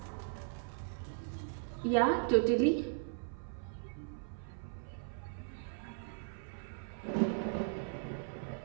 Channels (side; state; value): left; silent; 52 dB below the other